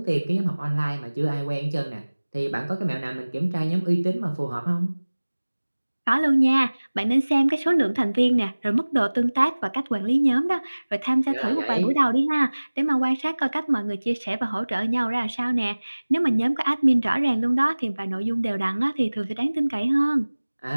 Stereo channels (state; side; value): inverted; both; correlation -1.00